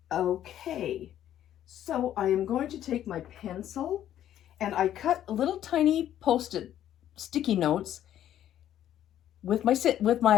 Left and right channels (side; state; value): right; quieter; 11.4 dB